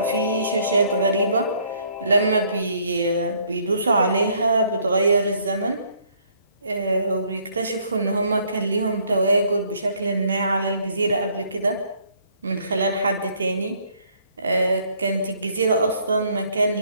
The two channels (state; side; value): inverted; both; correlation -0.65